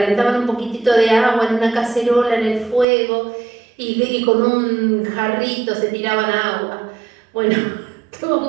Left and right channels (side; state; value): left; drops out; at 2.9 s